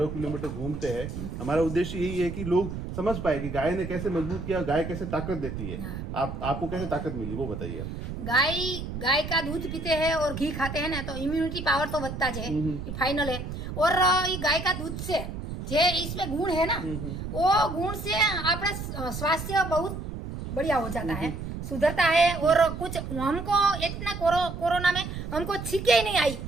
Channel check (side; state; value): right; noise; rumble, 7 dB below the sound